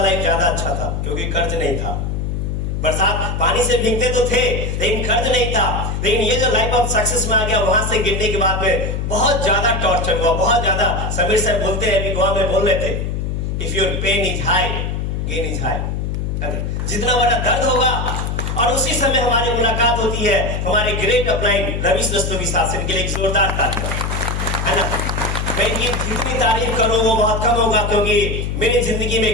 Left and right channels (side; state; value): left; noise; hum, 2 dB below the sound